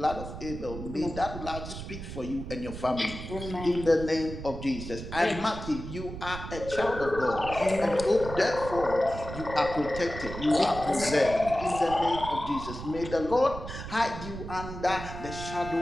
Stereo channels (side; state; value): right; noise; rumble, 9 dB below the sound